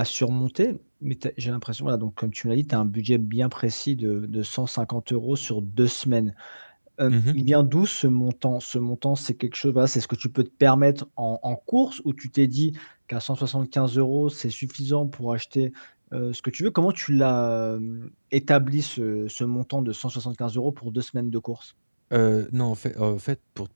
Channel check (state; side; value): inverted; both; correlation -1.00